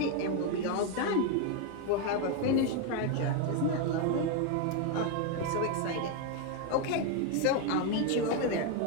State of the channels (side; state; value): both; different; correlation 0.01